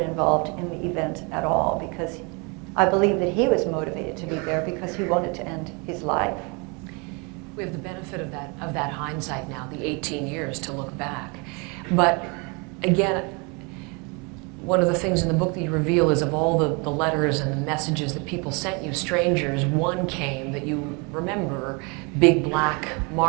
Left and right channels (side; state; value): left; quieter; 31.0 dB